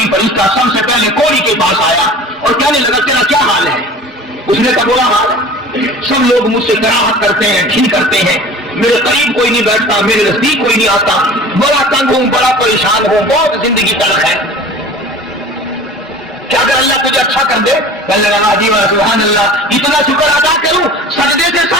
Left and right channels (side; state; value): both; normal; correlation 0.41